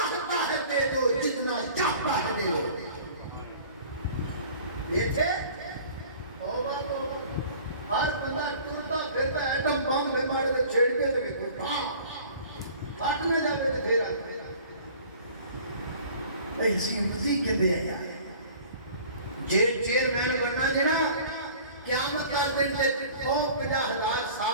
ہے دے دو جتنا چاہتا ہے دے دو یہ تھے ہر بندہ ٹرتا پھرتا ایٹم بم بیمار دے چھیڑ کے لگے کوئی پھاٹنے جاتے تھے پھر آئے ایسی مزی کے بے آیا چیئرمین بننا جنا قیامت کا دن تے 50,000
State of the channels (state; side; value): inverted; both; correlation -0.47